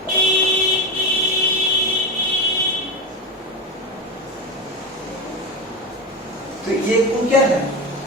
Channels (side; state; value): both; normal; correlation 0.18